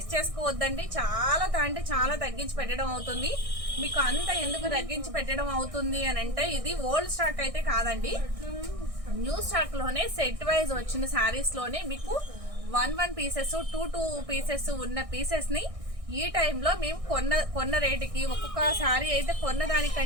చేసుకోవద్దండి. చాలా తగ్గించి పెట్టడం అవుతుంది. మీకు అంత ఎందుకు తగ్గించి పెట్టడం అవుతుంది అని అంటే, ఇది ఓల్డ్ స్టాక్ అయితే కాదండి, న్యూ స్టాక్ లోనే సెట్ వైజ్ వచ్చిన శారీస్ లోనే మీకు 1 పీసెస్ 2 పీసెస్ ఉన్న పీసెస్ ని ఈ టైంలో మేము కొన్న రేటుకి, ఒక్కొక్క శారీ అయితే కొన్న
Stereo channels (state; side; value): late; left; 1.6 ms